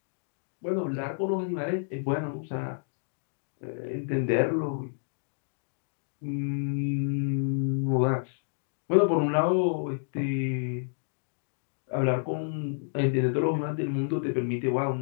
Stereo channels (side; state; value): right; silent; digital silence